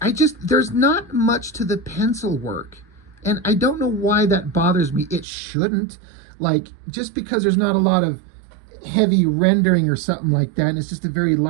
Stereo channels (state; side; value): drops out; left; at 5.2 s